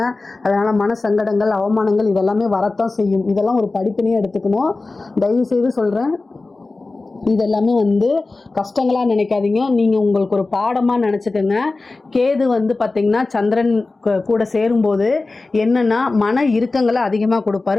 அதனால் மன சங்கடங்கள், அவமானங்கள் இதெல்லாமே வரத்தான் செய்யும். இதெல்லாம் ஒரு படிப்பினையே எடுத்துக்கணும். தயவுசெய்து சொல்கிறேன், இதெல்லாமே வந்து கஷ்டங்களாக நினைக்காதீங்க. நீங்கள் உங்களுக்கு ஒரு பாடமாக நினச்சிக்கோங்க. கேது வந்து பார்த்திங்கன்னா சந்திரன் கூட சேரும்போது என்னென்னா மன இறுக்கங்களை அதிகமாக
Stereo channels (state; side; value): quieter; right; 3.5 dB